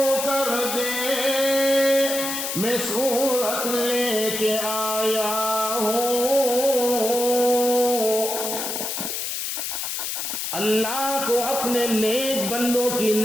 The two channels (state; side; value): noise; left; hiss, 3 dB below the sound